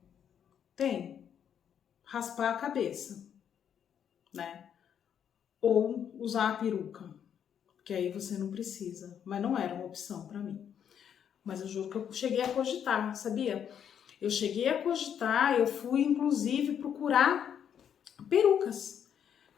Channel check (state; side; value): quieter; right; 8.6 dB